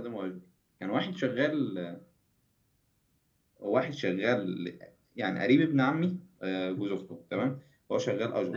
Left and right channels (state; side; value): identical; both; correlation 1.00